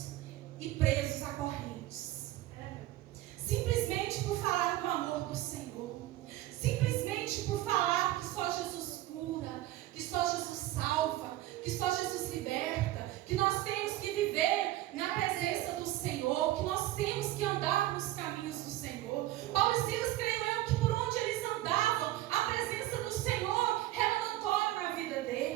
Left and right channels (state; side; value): quieter; left; 15.6 dB